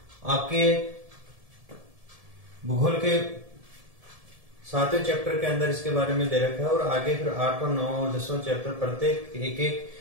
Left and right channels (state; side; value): late; left; 1.7 ms